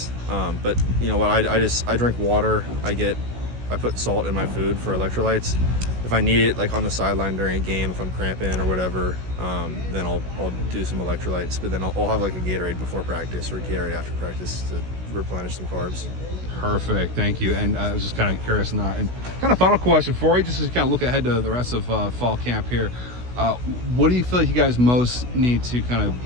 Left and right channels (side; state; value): left; late; 16 ms